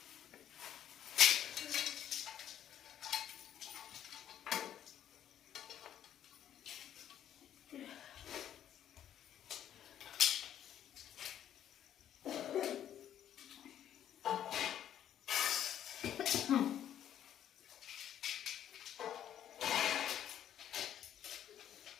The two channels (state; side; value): quieter; right; 10.5 dB